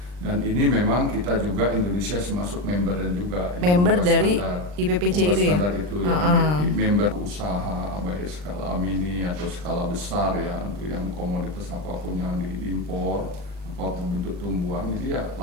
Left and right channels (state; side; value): late; left; 39 ms